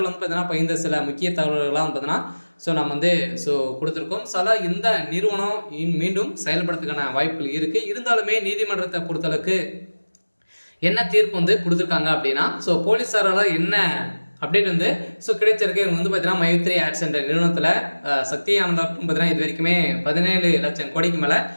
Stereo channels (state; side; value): inverted; both; correlation -1.00